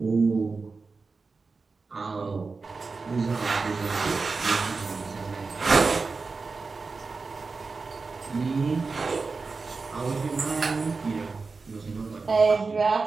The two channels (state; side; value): quieter; left; 4.3 dB